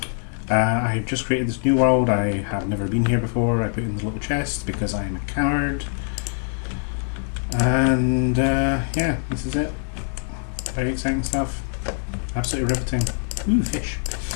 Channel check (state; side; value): silent; right; 63 dB below the other